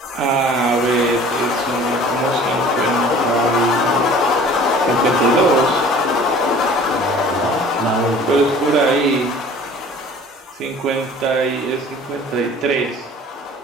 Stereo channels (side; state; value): both; normal; correlation 0.47